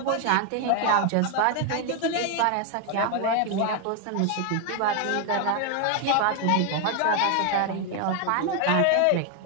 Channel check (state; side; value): different; both; correlation 0.01